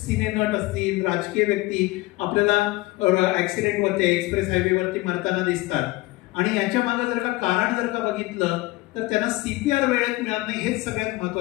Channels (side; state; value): right; quieter; 20.7 dB